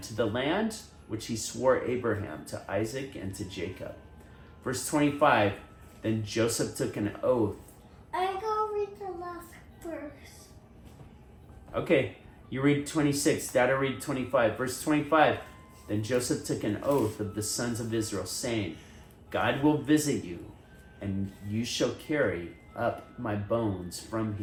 to the land which he swore Abraham, to Isaac, and to Jacob. Verse 25. Then Joseph took an oath. I'm going to read the last verse. Okay, you read 26. Dada read 25. Verse 25. Then Joseph took an oath of the sons of Israel, saying, God will visit you, and you shall carry up my bones from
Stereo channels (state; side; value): identical; both; correlation 1.00